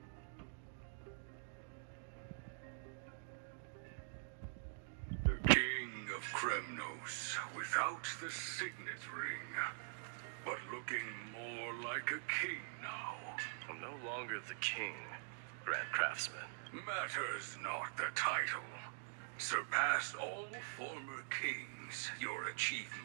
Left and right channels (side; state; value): left; silent; digital silence